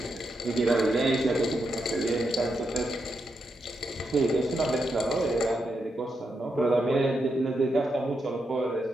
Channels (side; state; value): both; normal; correlation 0.83